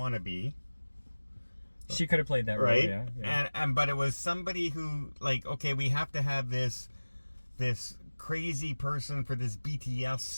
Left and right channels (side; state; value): both; inverted; correlation -1.00